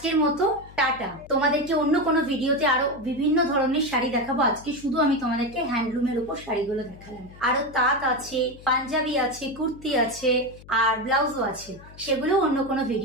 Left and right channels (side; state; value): left; noise; hum, 20 dB below the sound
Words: মতো টাটা। তোমাদেরকে অন্য কোনো ভিডিওতে আরো বিভিন্ন ধরনের শাড়ি দেখাবো। আজকে শুধু আমি তোমাদেরকে হ্যান্ডলুমের উপর শাড়িগুলো দেখালাম, আরো তাঁত আছে, পাঞ্জাবি আছে, কুর্তি আছে, আর ব্লাউজও আছে, সেগুলো অন্য কোনো